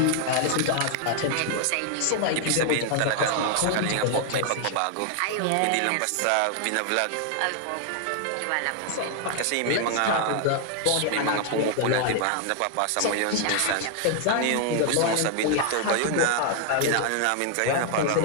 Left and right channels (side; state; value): both; different; correlation 0.00